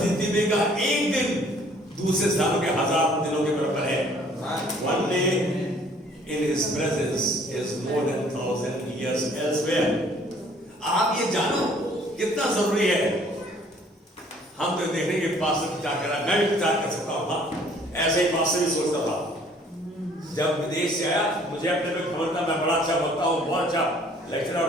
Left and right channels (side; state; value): both; normal; correlation 0.58